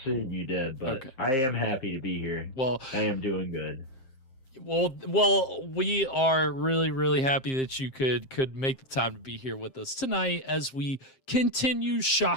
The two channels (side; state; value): right; late; 7.6 ms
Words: you did, but okay. I am happy to be here. Well, I am doing good. Well, we are really, really happy that you could make the time to be here with us tonight as we continue